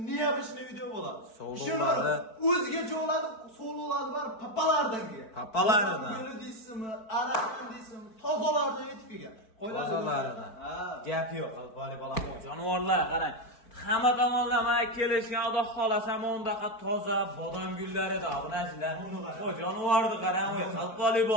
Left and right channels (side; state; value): right; late; 4.5 ms